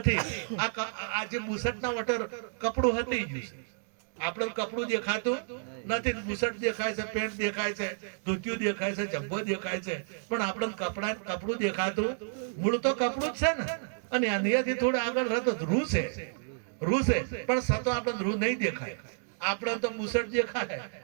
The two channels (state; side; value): silent; left; digital silence